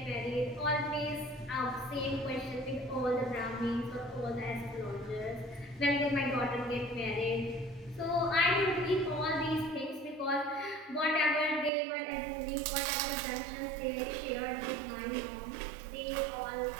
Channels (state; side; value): drops out; left; at 11.7 s